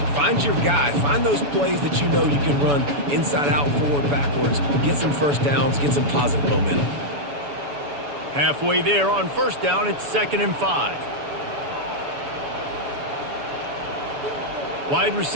Find your guy. Find those plays that you know you can run inside out, forward, backwards. Get some first downs. Get some positive momentum. Halfway there on first down, it's 2nd and 5. Wide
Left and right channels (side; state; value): left; late; 7.0 ms